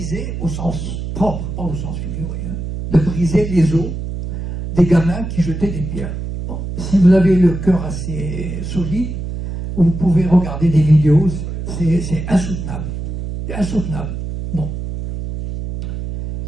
au sens propre, pas au sens figuré, hein, de briser les os des gamins qui jetaient des pierres. Bon, si vous avez le cœur assez solide, vous pouvez regarder des vidéos, c'est insoutenable. C'est insoutenable. Bon.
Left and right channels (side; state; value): right; noise; hum, 6 dB below the sound